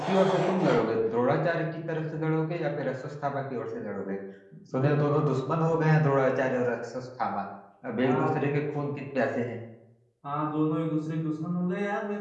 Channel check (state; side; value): identical; both; correlation 1.00